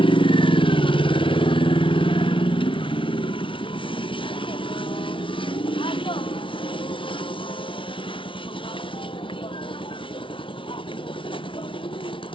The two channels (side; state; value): right; late; 0.25 ms